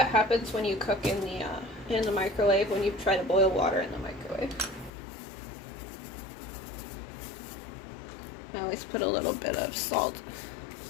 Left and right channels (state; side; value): drops out; right; at 4.9 s